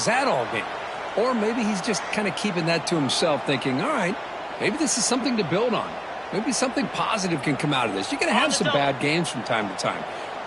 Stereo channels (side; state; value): both; identical; correlation 1.00